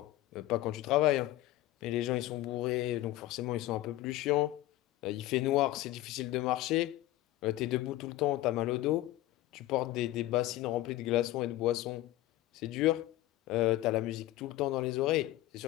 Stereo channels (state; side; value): quieter; right; 16.1 dB